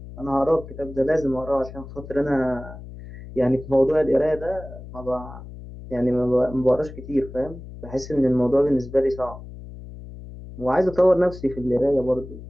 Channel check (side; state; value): left; noise; hum, 14 dB below the sound